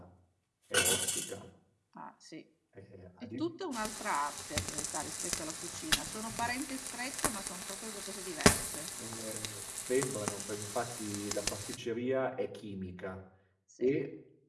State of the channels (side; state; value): both; identical; correlation 1.00